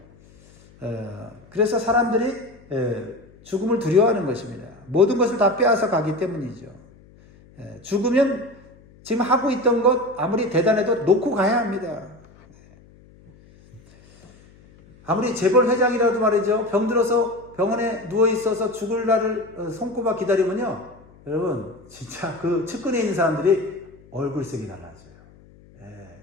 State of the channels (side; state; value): left; noise; hum, 26 dB below the sound